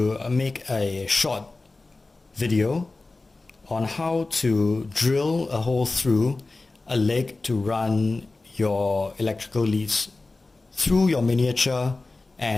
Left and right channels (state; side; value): quieter; right; 3.4 dB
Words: make a short video on how to drill a hole through a leg to run your electrical leads through your miniature